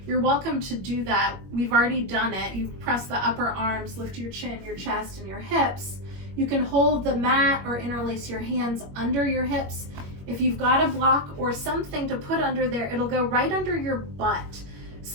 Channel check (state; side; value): late; left; 21 ms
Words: you're welcome to do that. We've already done it. You press the upper arms, lift your chin, your chest, and your hips. You can hold the mat or interlace your hands under your hips. If you've got a block or something to put under there, it'll go right under your butt.